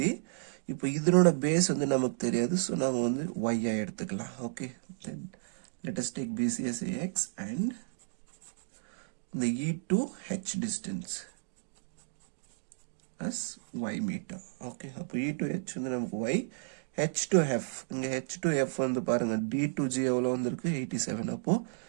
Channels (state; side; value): silent; left; digital silence